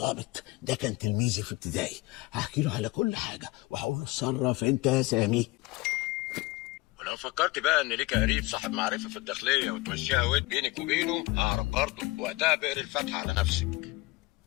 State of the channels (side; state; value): right; quieter; 21.8 dB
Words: ده، كان تلميذي في ابتدائي. هحكي له على كل حاجة وهقول له اتصرف انت يا سامي. ولو فكرت بقى إن ليك قريب صاحب معرفة في الداخلية وتمشيها ود بينك وبينه، ههرب برضه، وقتها بقري الفتحة على نفسك.